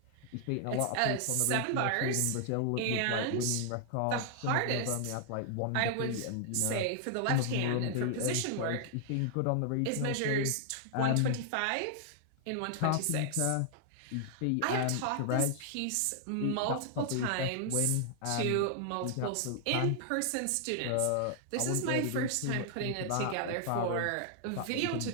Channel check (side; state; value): both; different; correlation 0.00